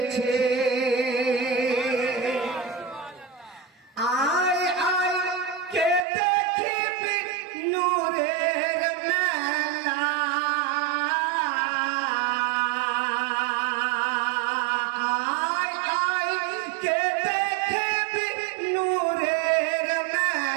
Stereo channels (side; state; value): left; drops out; at 6.1 s